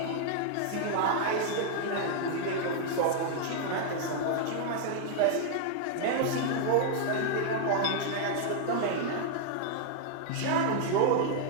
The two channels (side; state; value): both; different; correlation -0.01